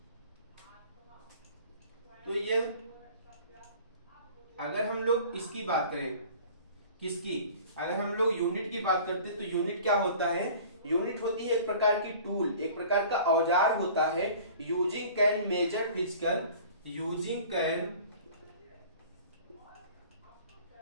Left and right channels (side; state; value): both; inverted; correlation -0.46